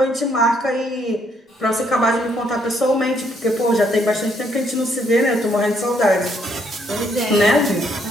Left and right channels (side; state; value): both; normal; correlation 0.70